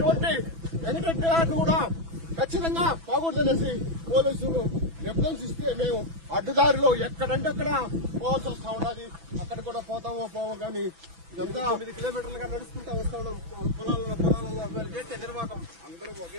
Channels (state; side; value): late; left; 6.0 ms